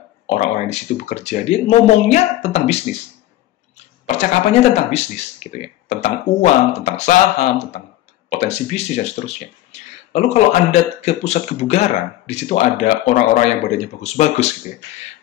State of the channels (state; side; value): quieter; right; 15.0 dB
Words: orang-orang di situ bekerja, dia ngomongnya tentang bisnis, percakapannya tentang bisnis gitu ya, tentang uang, tentang saham, tentang potensi bisnis dan seterusnya. Lalu kalau Anda ke pusat kebugaran, di situ ada orang-orang yang badannya bagus-bagus gitu ya,